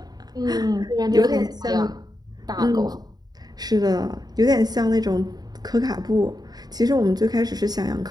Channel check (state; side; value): late; left; 0.19 ms